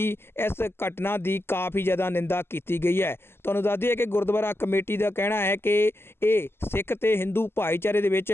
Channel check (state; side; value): late; right; 0.12 ms